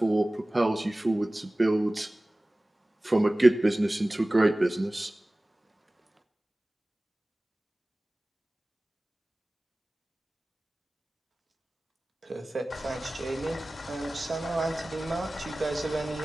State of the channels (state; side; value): normal; both; correlation 0.98